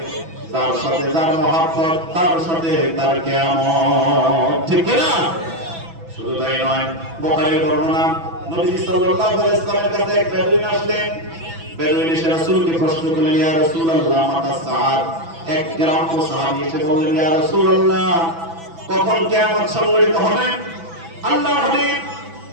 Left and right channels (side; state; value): left; late; 6.0 ms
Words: তার সাথে যার মহব্বত তার সাথে তার কিয়ামত। ঠিক না? শুধু তাই নয়, বুখারীর বর্ণনা, নবী সাল্লাল্লাহু আলাইহি ওয়াসাল্লামের কাছে এক বেদুইন আসলেন। বেদুইন এসে রাসূলকে প্রশ্ন করলেন, ইয়া রাসূলুল্লাহ মাতা সাআত। এক গ্রাম্য সাহাবী এসে বললেন, ইয়া রাসূলুল্লাহ কখন কিয়ামত সংঘটিত হবে? আল্লাহর হাবিব